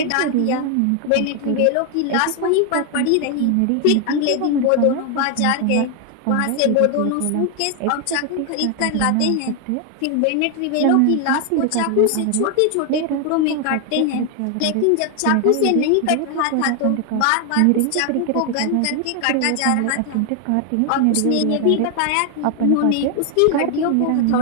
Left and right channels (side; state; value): both; different; correlation 0.01